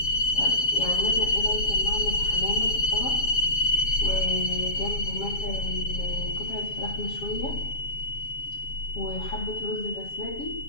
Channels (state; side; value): late; right; 7.3 ms